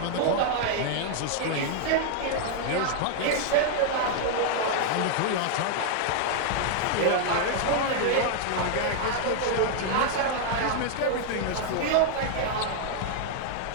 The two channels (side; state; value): both; different; correlation -0.01